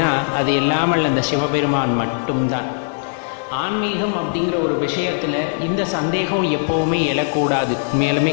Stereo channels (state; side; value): silent; right; digital silence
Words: அது இல்லாமல் அந்த சிவபெருமான் மட்டும்தான். ஆன்மீகம் அப்படிங்கிற ஒரு விஷயத்தில் இந்த சந்தேகம் எப்போவுமே எழக்கூடாது.